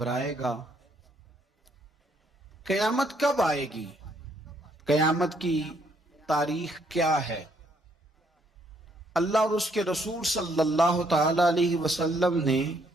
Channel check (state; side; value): normal; both; correlation 0.69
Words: گا۔ قیامت کب آئے گی؟ قیامت کی تاریخ کیا ہے؟ اللہ اور اس کے رسول صلی اللہ تعالی علیہ وسلم نے